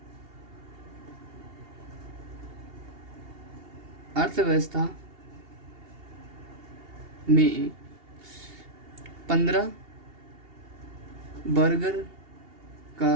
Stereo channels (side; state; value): left; late; 2.8 ms